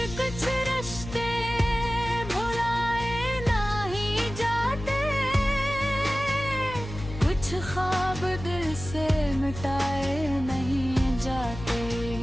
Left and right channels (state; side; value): noise; left; hum, 10 dB below the sound